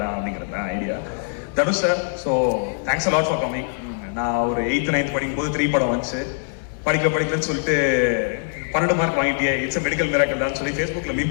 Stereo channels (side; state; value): right; silent; digital silence